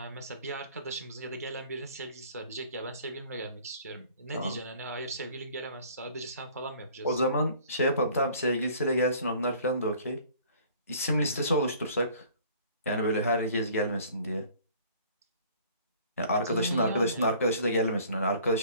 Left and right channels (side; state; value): both; inverted; correlation -0.52